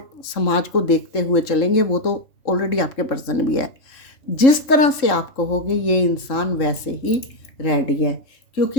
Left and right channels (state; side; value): late; right; 3.7 ms